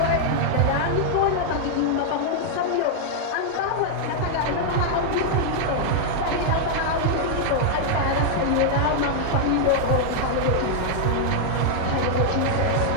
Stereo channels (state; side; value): different; both; correlation -0.01